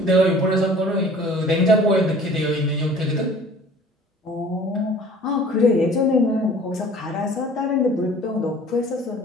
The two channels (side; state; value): both; normal; correlation 0.49